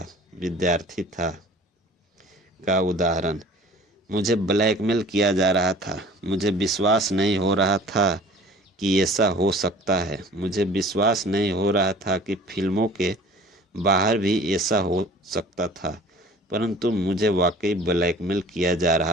विद्यार्थी था का उदाहरण। मुझे ब्लैकमेल किया जा रहा था। मुझे विश्वास नहीं हो रहा था कि ऐसा हो सकता है। मुझे विश्वास नहीं हो रहा था कि फिल्मों के बाहर भी ऐसा हो सकता था, परंतु मुझे वाकई ब्लैकमेल किया जा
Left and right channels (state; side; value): normal; both; correlation 0.47